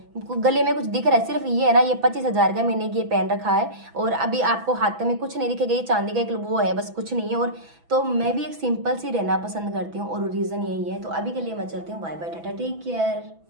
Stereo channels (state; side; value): late; left; 6.0 ms